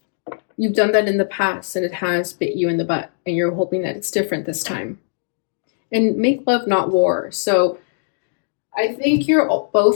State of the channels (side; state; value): right; silent; digital silence